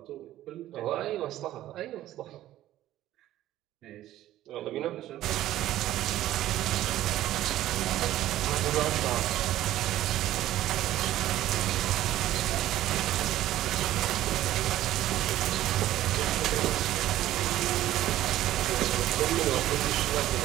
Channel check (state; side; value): quieter; left; 13.9 dB